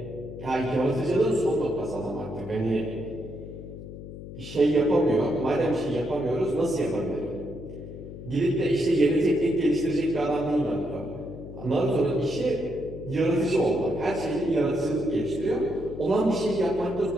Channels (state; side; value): noise; left; hum, 12 dB below the sound